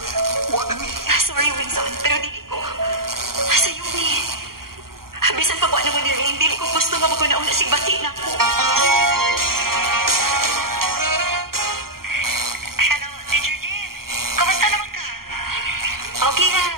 na mi. Sorry, Winson, pero dili ko. Sa'yo ni. Bisan pag wala mo ni Rain, dili ko gusto nga maguna-una sigbati na ko. Hello, Teacher Jean. Kamusta naman ka? Okay nga,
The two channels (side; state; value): left; late; 0.93 ms